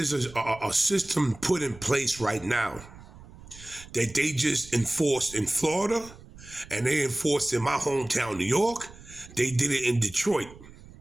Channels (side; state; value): right; noise; rumble, 19 dB below the sound